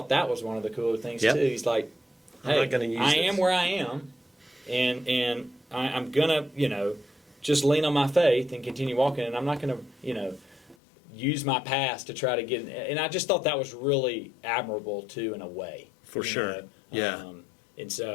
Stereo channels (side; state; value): right; drops out; at 10.8 s